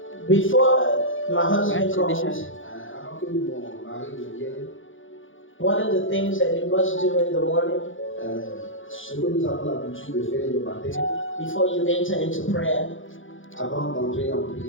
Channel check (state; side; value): late; right; 0.57 ms